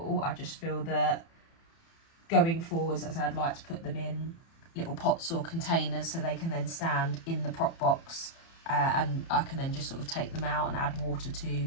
I just feel that going forwards, as I'd like to put them in little pots or containers so they can then stand in the prop box, and I can then just sort of take them out and add water to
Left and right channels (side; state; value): right; late; 30 ms